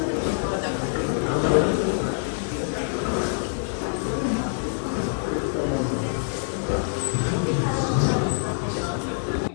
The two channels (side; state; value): right; silent; 62 dB below the other